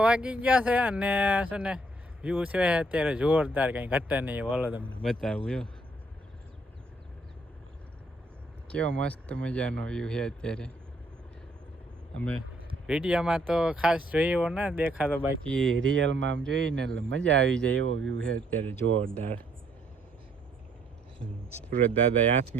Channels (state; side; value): normal; both; correlation 0.67